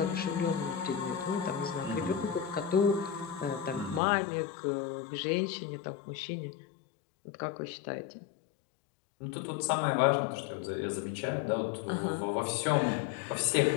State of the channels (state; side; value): drops out; right; at 4.0 s